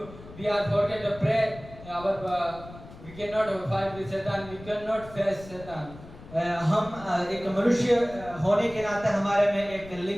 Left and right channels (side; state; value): left; noise; rumble, 17 dB below the sound